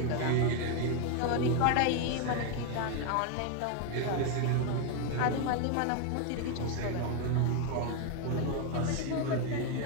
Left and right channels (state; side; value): different; both; correlation 0.01